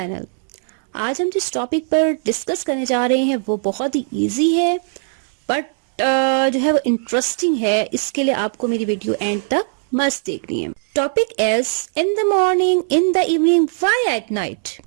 आज हम जिस टॉपिक पर डिस्कस करने जा रहे हैं वो बहुत ही इजी है बट जो है वो इंटरेस्टिंग है। इसके लिए आपको मेरी वीडियो एंड तक मस्त देखनी है। Topic is in the morning, in the evening, why at night.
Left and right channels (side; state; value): left; silent; 66 dB below the other